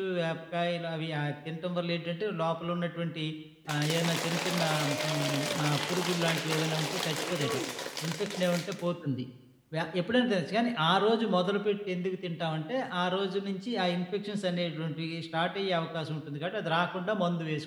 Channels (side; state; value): both; identical; correlation 1.00